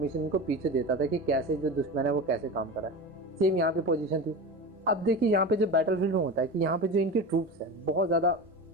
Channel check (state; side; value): normal; both; correlation 0.27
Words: इनको पीछे देता था कि कैसे जो दुश्मन है वो कैसे काम कर रहा है। सेम यहाँ पे पोजीशन थी। अब देखिए यहाँ पे जो बैटल फील्ड में होता है कि यहाँ पे जो इनके ट्रूप्स हैं बहुत ज़्यादा